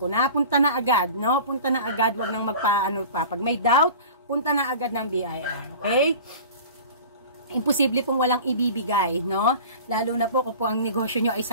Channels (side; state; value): both; inverted; correlation -0.39